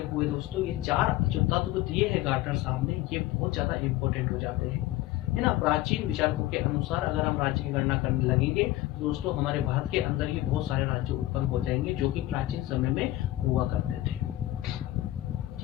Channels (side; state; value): right; quieter; 16.1 dB